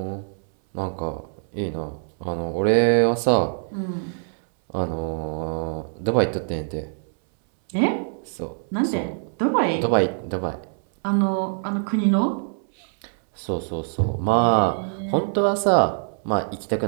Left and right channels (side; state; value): left; silent; 63 dB below the other